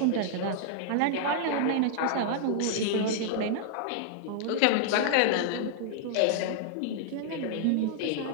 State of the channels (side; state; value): both; different; correlation -0.01